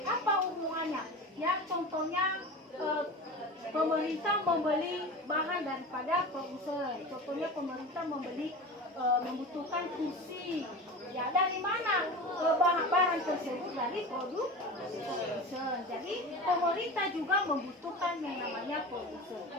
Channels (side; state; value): both; normal; correlation 0.30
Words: Apa hubungannya? Ya, contohnya pemerintah membeli bahan daripada produsen. Contohnya pemerintah membutuhkan kursi. Ya, dari mana barang tersebut? Dari produsen. Jadi pemerintah juga membutuhkan yang namanya produsen.